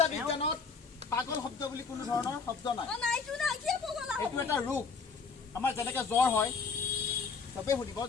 বিজ্ঞানত পাগল শব্দ বুলি কোনো ধৰণৰ শব্দ নাই এইটো এটা ৰোগ আমাৰ যেনেকে জ্বৰ হয় সবে শুনিব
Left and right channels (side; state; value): right; quieter; 5.1 dB